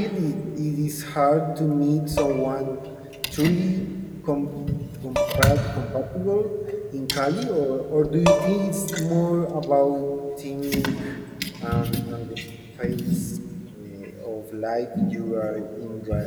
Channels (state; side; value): identical; both; correlation 1.00